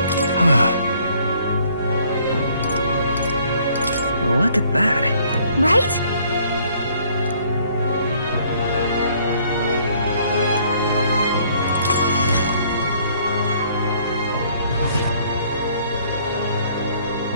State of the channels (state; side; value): inverted; both; correlation -0.61